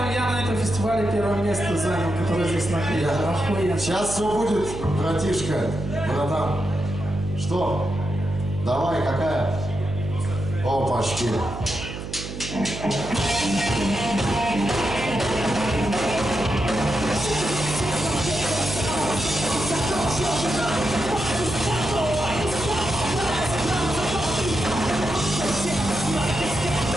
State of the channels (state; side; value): noise; right; hum, 8 dB below the sound